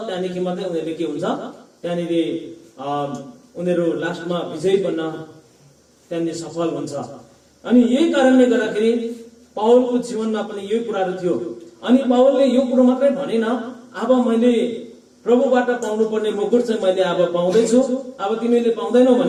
त्यहाँदेखि मात्रै उनीहरूले के हुन्छ, त्यहाँनिर उनीहरू लास्टमा विजयी बन्न त्यहाँनिर सफल हुन्छ। अनि यही कारणले गर्दाखेरि पावलको जीवनमा पनि यही कुराहरू थियो। अनि पावलले यो कुरो मात्रै भनेन, अब मैले प्रभुबाट पाउनु पर्ने मुकुट चाहिँ मैले अब पाउँदैछु, अब तिमीले पाउँदैनौ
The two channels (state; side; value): identical; both; correlation 1.00